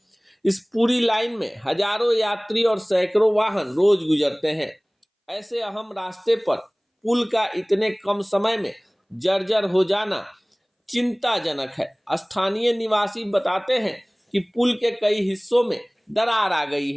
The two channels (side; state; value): both; identical; correlation 1.00